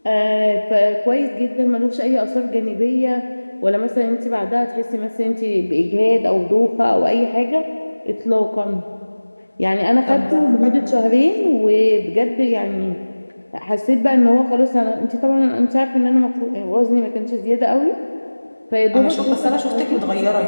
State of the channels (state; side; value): inverted; both; correlation -1.00